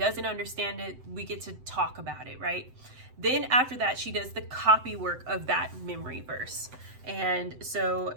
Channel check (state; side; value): late; left; 7.9 ms